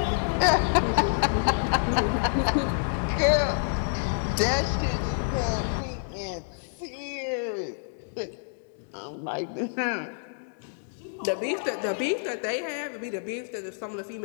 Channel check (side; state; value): right; silent; digital silence